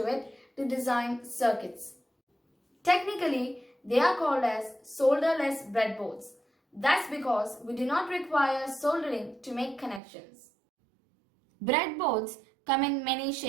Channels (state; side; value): drops out; left; at 10.0 s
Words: it to design circuits. Technically, they are called as solderless breadboards. That's because we do not require soldering to make connections. Breadboards come in many